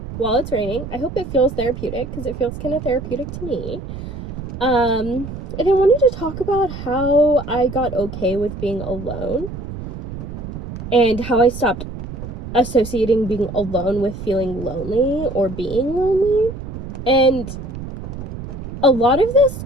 while it's raining. I hope it feels therapeutic, because it feels kind of therapeutic to me. And I wanted to talk about how I got okay with being alone and how I stopped associating being alone with feeling lonely or being lonely. And a lot of this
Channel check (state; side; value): noise; right; rumble, 9 dB below the sound